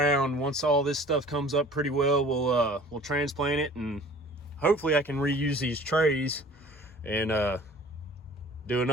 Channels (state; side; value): normal; both; correlation 0.48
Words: Once all this stuff comes up pretty well, we'll transplant it, and hopefully I can reuse these trays and do